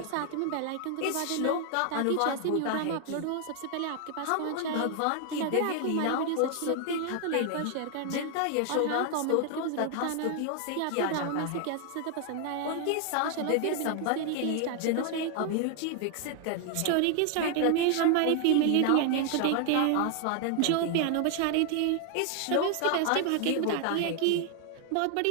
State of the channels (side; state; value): both; different; correlation 0.00